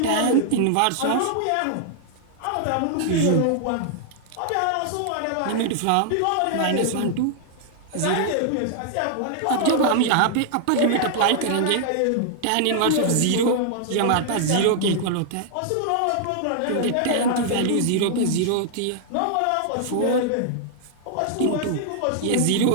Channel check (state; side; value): different; both; correlation -0.01